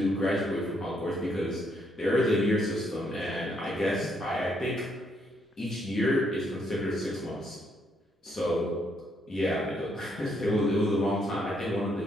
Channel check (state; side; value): normal; both; correlation 0.73